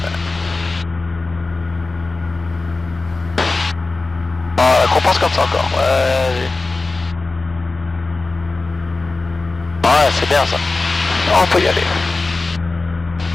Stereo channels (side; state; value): right; quieter; 3.5 dB